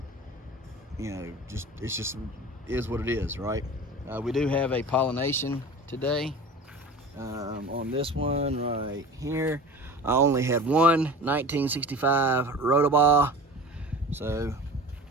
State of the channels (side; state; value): both; normal; correlation 0.36